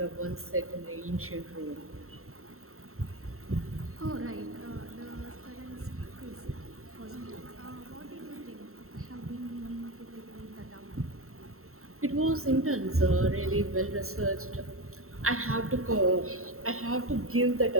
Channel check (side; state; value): left; late; 0.63 ms